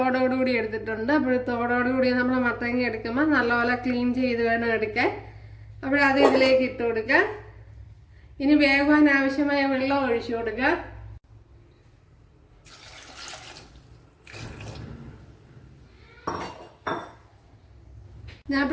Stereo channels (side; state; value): both; identical; correlation 1.00